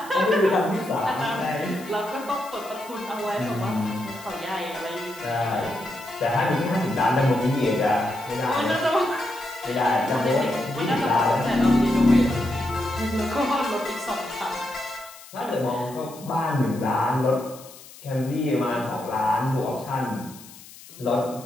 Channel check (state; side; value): noise; left; hiss, 19 dB below the sound